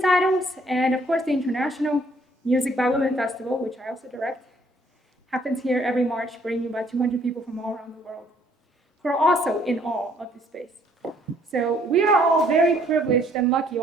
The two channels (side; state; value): both; normal; correlation 0.63